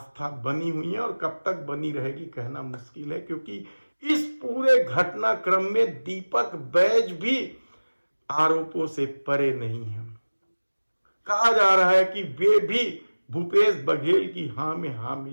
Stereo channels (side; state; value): both; inverted; correlation -1.00